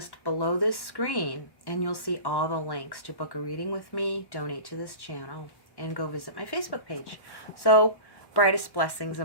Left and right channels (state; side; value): late; right; 1.1 ms